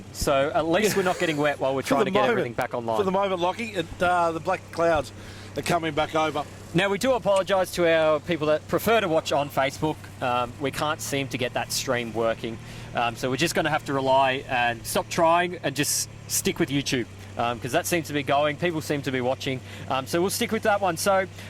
so at least we're not getting wet while we're trying to get everything back online. For the moment, Lockie, the black clouds are coming back over. Now, we do apologise to our people that prefer to watch on Facebook. We can't seem to get that stream working, so we're just going to have to rely and stop trying and just stick with YouTube. Because that seems to be going, people seem to be watching, so we'll stick with that one. So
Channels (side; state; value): both; identical; correlation 1.00